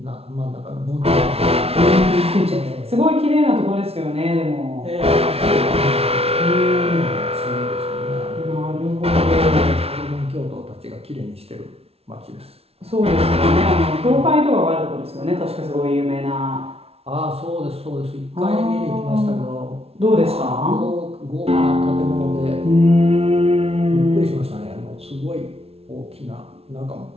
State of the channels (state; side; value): late; left; 0.29 ms